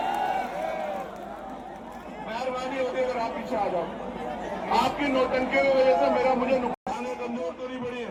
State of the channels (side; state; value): both; identical; correlation 1.00